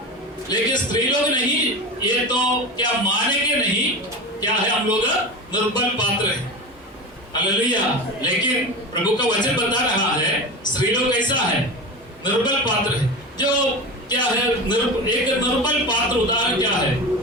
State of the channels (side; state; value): both; normal; correlation 0.27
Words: लेकिन स्त्री लोग नहीं, ये तो क्या मानेंगे नहीं, क्या है हम लोग निर्बल पात्र है। हालेलुया। लेकिन प्रभु का वचन बता रहा है स्त्री लोग कैसा है, निर्बल पात्र है। जो क्या है एक निर्बल पात्र उदाहरण क्या है,